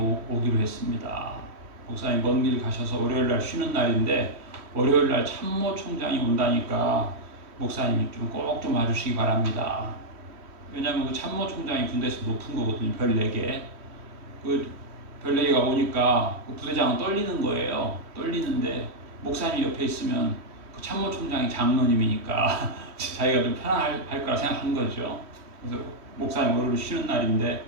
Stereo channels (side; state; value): left; late; 3.1 ms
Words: 오기로 했습니다. 목사님 먼 길 가셔서 월요일 날 쉬는 날인데 월요일 날 참모총장이 온다니까 목사님이 좀 꼭 좀 와주시기 바랍니다. 왜냐하면 그 참모총장이 군대에서 높은 거거든요. 별 4개. 그 별 4개가 오니까 그 부대장은 떨리는 거예요. 떨리는데 목사님 옆에 있으면 그 참모총장이 장로님이니까 자기가 좀 편안할 거라 생각한 거죠. 그래서 목사님 월요일 쉬는 날인데